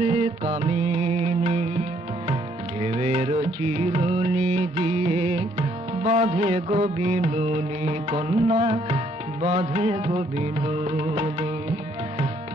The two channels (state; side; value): normal; both; correlation 0.67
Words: কামিনী, ঢেউয়ের চিরুনি দিয়ে বাঁধে গো বিনুনি, কন্যা বাঁধে গো বিনুনি।